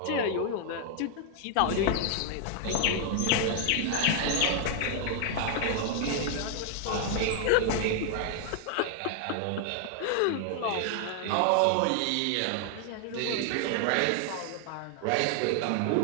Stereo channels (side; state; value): both; different; correlation 0.00